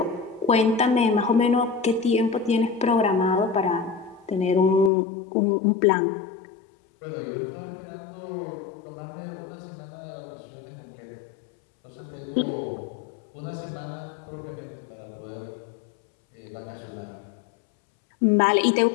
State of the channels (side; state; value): right; drops out; at 4.9 s